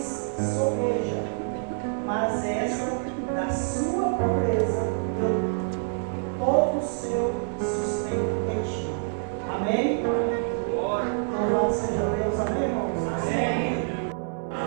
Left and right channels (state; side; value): silent; left; 60 dB below the other